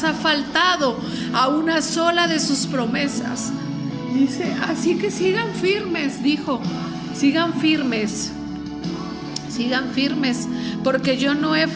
ha faltado a una sola de sus promesas. Dice: así que sigan firmes, dijo, sigan firmes, porque yo no he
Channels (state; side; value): noise; right; hum, 28 dB below the sound